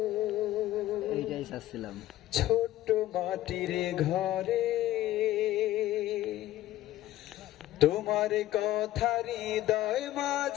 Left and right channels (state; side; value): quieter; right; 14.6 dB